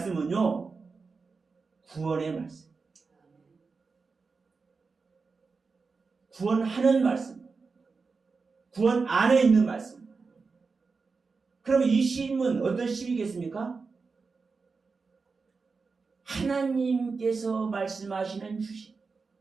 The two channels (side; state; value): left; quieter; 4.6 dB